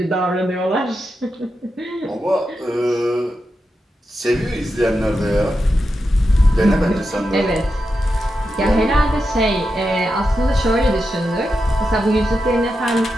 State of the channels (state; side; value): normal; both; correlation 0.88